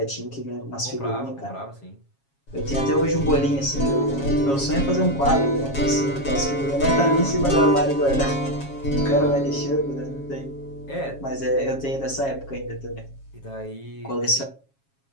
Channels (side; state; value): right; late; 7.3 ms